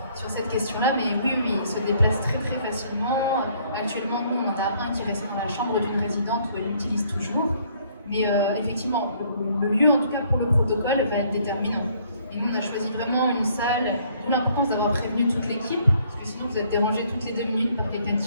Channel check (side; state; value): both; inverted; correlation -0.63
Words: sur cette question-là, mais oui, il se déplace très très facilement. Actuellement, nous, on en a un qui reste dans la chambre d'une résidente où elle l'utilise toujours. Mais effectivement, le lieu, en tout cas pour le protocole, va être déterminant. Et nous, on a choisi vraiment une salle, d'où l'importance d'avoir prévenu toute l'équipe, parce que sinon vous êtes dérangés toutes les 2 minutes par quelqu'un